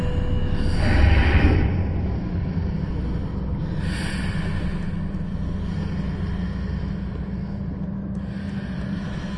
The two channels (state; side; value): identical; both; correlation 1.00